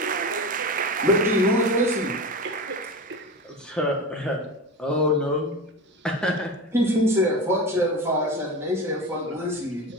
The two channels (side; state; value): both; normal; correlation 0.26